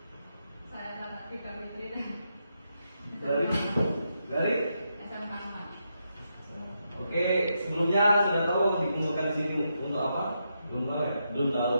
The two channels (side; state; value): both; inverted; correlation -0.83